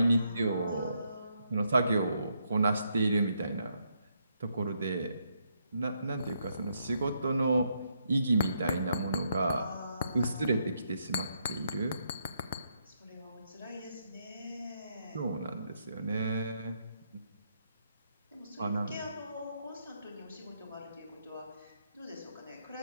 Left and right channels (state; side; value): inverted; both; correlation -0.77